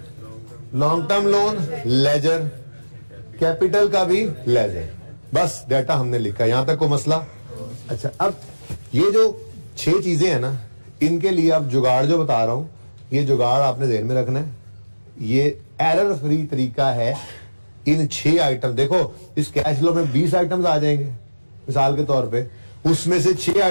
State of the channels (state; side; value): inverted; both; correlation -1.00